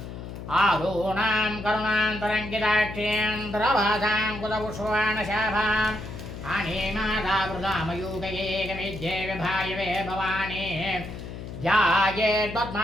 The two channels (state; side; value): noise; left; hum, 10 dB below the sound